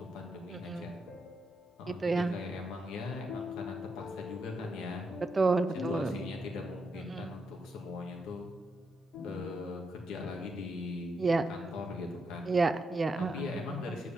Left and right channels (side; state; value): both; normal; correlation 0.82